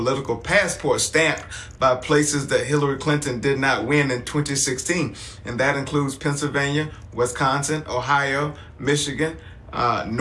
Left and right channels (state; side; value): identical; both; correlation 1.00